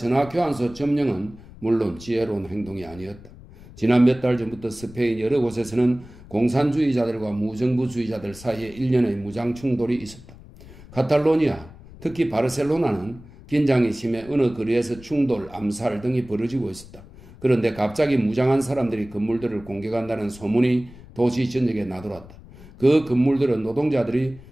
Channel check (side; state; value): left; noise; rumble, 19 dB below the sound